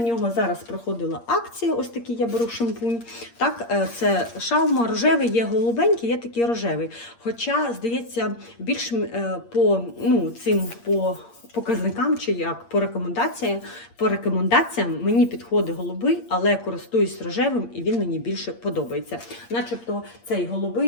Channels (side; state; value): right; late; 8.6 ms